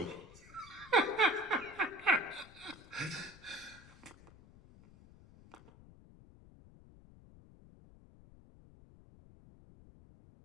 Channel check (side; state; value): left; noise; rumble, 21 dB below the sound